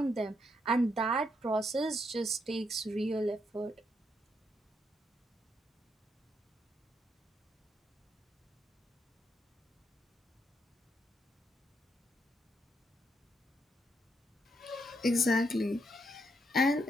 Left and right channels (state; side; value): normal; both; correlation 0.77